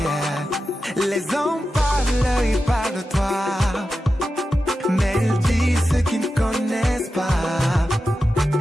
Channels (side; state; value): both; normal; correlation 0.91